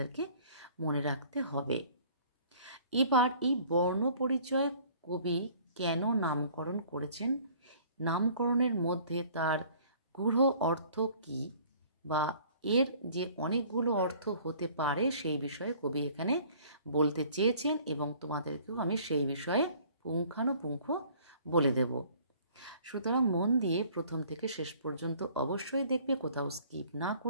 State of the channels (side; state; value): both; inverted; correlation -0.54